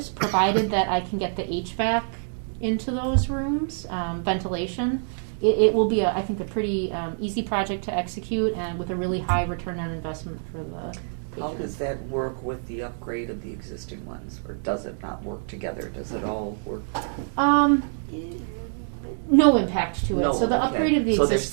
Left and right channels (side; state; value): left; silent; digital silence